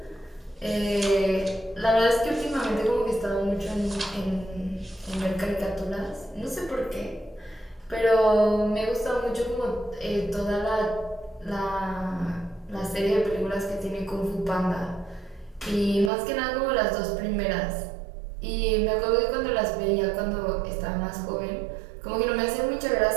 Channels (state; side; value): drops out; left; at 16.1 s